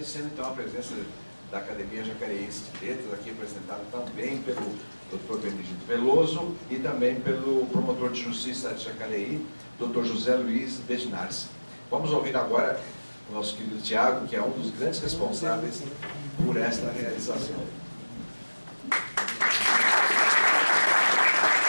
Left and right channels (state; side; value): inverted; both; correlation -1.00